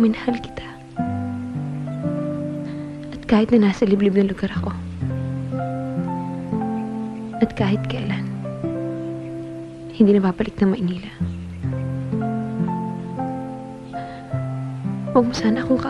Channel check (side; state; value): both; identical; correlation 1.00